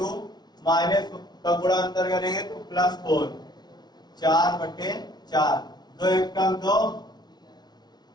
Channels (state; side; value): late; right; 0.20 ms